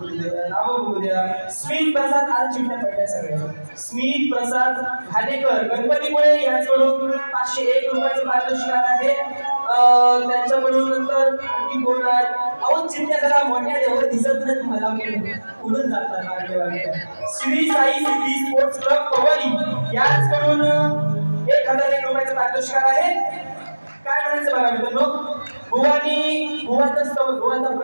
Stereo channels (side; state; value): both; inverted; correlation -1.00